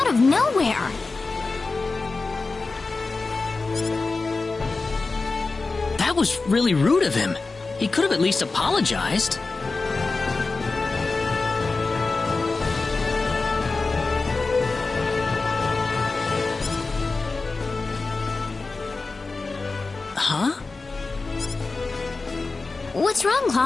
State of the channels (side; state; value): right; quieter; 3.8 dB